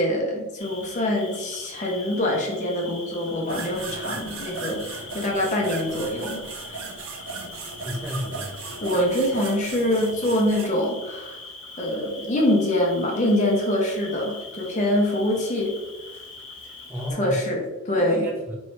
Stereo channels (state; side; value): normal; both; correlation 0.31